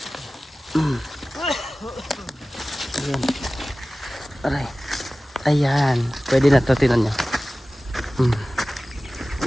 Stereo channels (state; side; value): normal; both; correlation 0.97